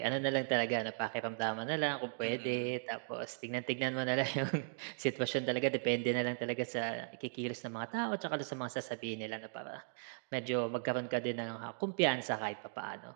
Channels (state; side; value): silent; left; digital silence